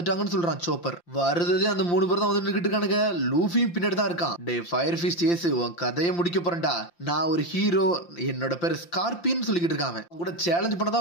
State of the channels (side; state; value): right; late; 5.8 ms